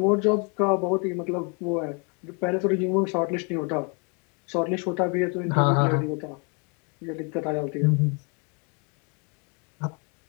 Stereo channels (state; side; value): quieter; right; 34.6 dB